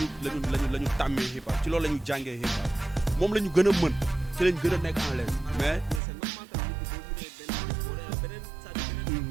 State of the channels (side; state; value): left; drops out; at 6.0 s